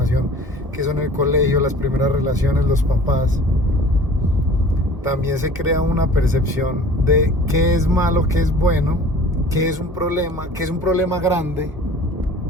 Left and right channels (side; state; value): both; normal; correlation 0.45